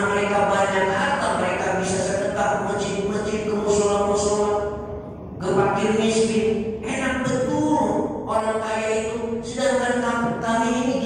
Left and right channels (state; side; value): identical; both; correlation 1.00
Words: mereka banyak harta, mereka bisa sedekah ke masjid-masjid, ke mushola-mushola, ke fakir miskin. Enak betul orang kaya itu. Sedangkan kami ini